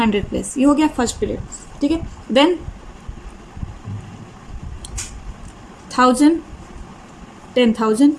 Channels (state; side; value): identical; both; correlation 1.00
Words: place. ये हो गया फर्स्ट पीरियड, ठीक है। देन 1000, 10,000,